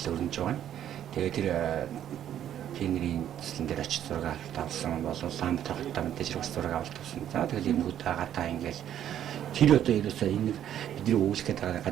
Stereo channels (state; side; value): quieter; left; 10.6 dB